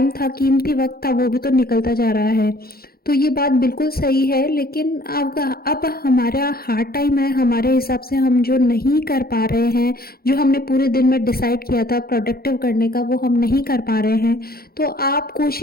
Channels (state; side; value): late; right; 0.44 ms